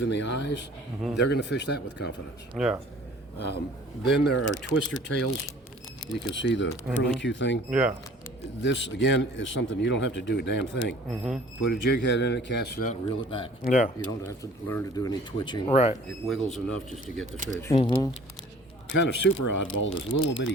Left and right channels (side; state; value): both; normal; correlation 0.50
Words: in the eyes, they're going to fish that with confidence. Yeah. Then there are twister tails. You can see the curlicue thing. Yeah. This, again, is something you don't have to do a damn thing. Put a jig head in it, cast it out, and reel it back. Yeah. You don't have to learn to do any twitching. Right. It wiggles enough just to get the fish. Kind of super oddball, this little bitty